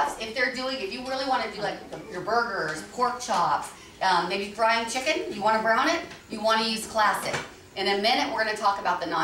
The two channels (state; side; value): identical; both; correlation 1.00